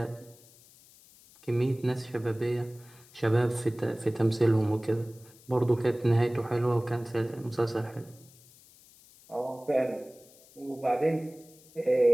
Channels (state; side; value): noise; left; hiss, 25 dB below the sound